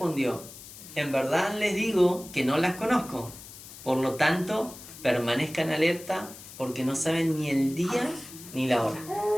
en verdad les digo que no las conozco. Por lo tanto, permanezcan alerta porque no saben ni el día ni la hora.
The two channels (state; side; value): noise; left; hiss, 16 dB below the sound